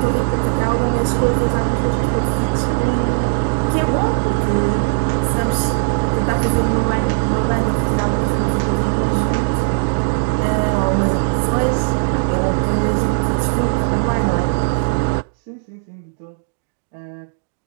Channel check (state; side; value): silent; left; digital silence